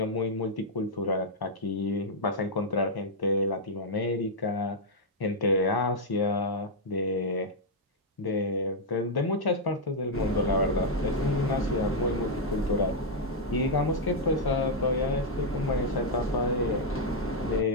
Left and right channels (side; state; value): both; normal; correlation -0.03